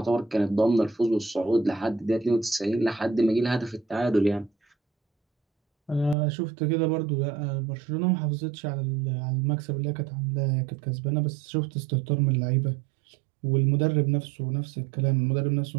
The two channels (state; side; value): drops out; left; at 6.2 s